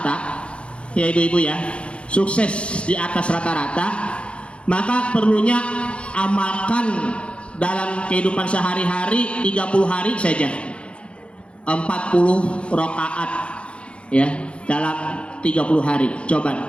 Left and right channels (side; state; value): right; late; 0.059 ms